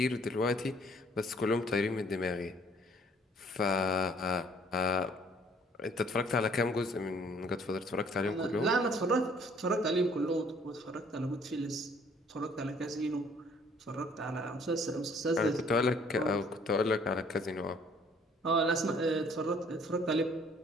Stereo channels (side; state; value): both; normal; correlation 0.59